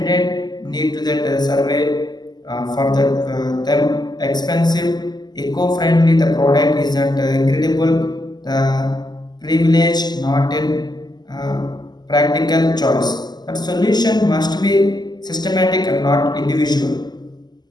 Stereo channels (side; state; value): right; late; 0.20 ms